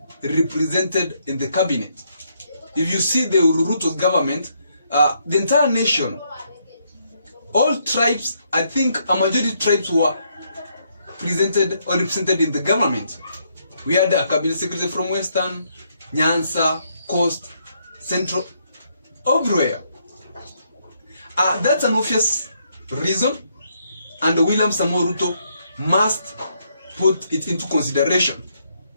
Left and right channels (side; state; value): both; inverted; correlation -0.74